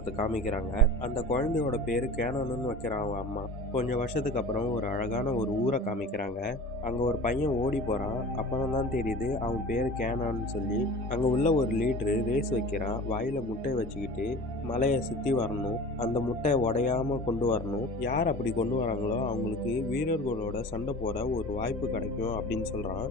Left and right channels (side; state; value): both; normal; correlation 0.38